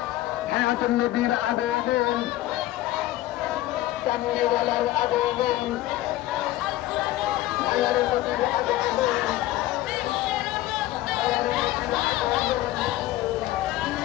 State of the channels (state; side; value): quieter; right; 15.6 dB